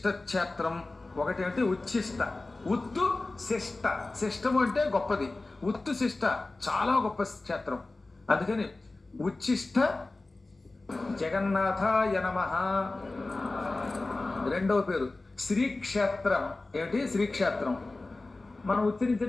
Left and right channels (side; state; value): right; quieter; 3.2 dB